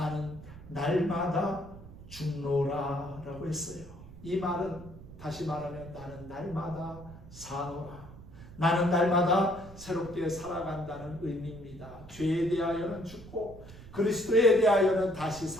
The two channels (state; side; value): noise; right; rumble, 17 dB below the sound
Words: 날마다 죽노라 라고 했어요. 이 말은 다시 말하면 나는 날마다 사노라, 나는 날마다 새롭게 살아간다는 의미입니다. 죄에 대하여는 죽고 그리스도에 대하여는 다시